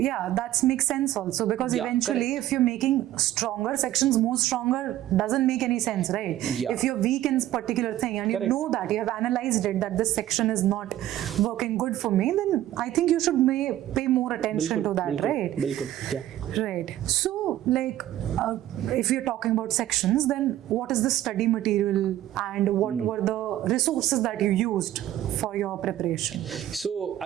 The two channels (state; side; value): quieter; left; 13.4 dB